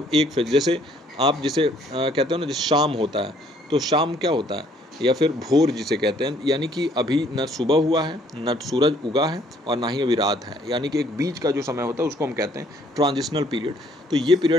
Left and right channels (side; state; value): both; normal; correlation 0.63